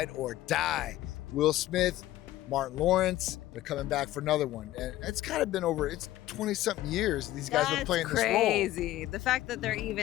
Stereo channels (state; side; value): quieter; right; 15.1 dB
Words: or Die. Will Smith, Martin Lawrence, they're coming back for another one. And it's kind of been over, it's 20-something years these guys have been playing this role. That's crazy. The fact that they're